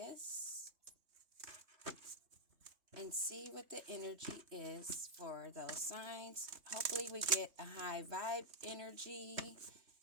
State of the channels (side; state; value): left; late; 3.2 ms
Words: and see what the energy is for those signs. Hopefully we get a high vibe energy,